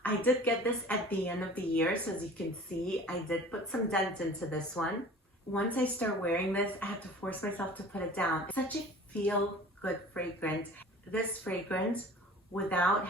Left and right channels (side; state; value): both; normal; correlation 0.44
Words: I did get this at the end of the year, so as you can see, I did put some dent into this one. Once I start wearing this, I have to force myself to put it down. It's such a feel-good fragrance. This fragrance, without